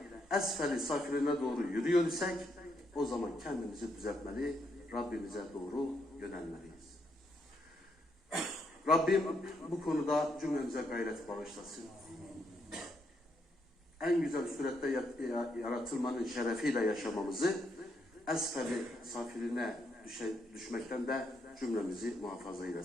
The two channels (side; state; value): both; normal; correlation 0.76